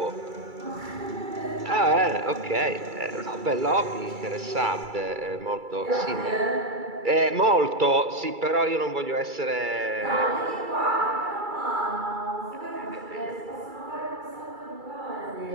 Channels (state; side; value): late; left; 2.3 ms